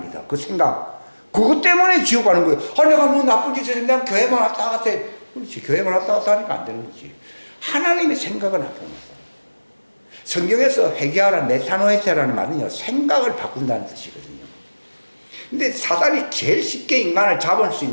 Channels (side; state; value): both; inverted; correlation -1.00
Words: 그 생각. 그것 때문에 지옥 가는 거예요. 내가 나쁜 짓을 했는데 난 교회만 왔다 갔다 해. 그렇지. 교회만 왔다 갔다 하니까 안 되는 거지. 하나님의 생각은 안 됩니다. 성경에서 회개하라 메타노에테라는 말은요, 생각을 바꾼다는 뜻이거든요. 근데 사단이 제일 쉽게 인간을 잡을 수